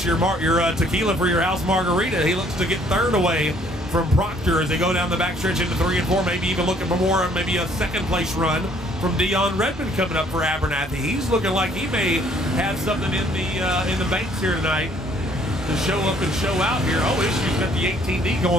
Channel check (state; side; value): normal; both; correlation 0.62